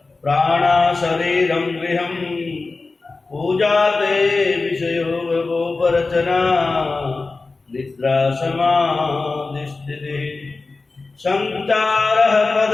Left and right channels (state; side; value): quieter; right; 3.7 dB